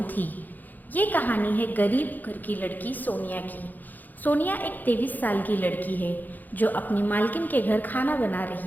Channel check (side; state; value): right; late; 0.085 ms